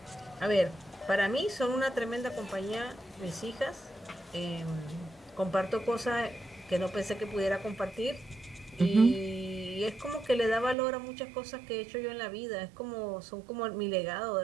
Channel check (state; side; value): drops out; left; at 10.8 s